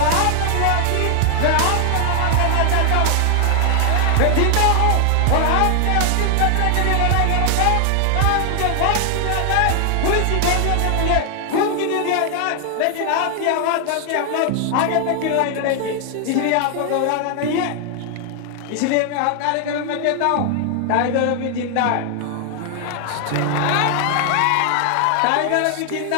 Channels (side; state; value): both; different; correlation 0.00